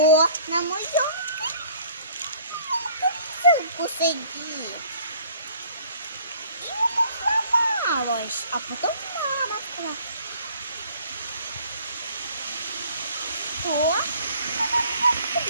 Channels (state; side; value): inverted; both; correlation -0.55